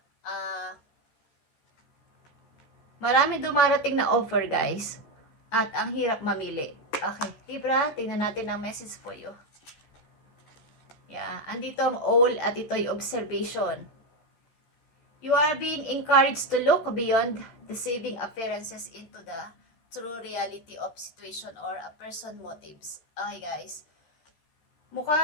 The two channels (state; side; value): late; right; 13 ms